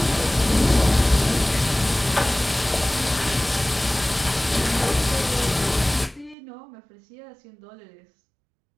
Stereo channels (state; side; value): drops out; left; at 6.4 s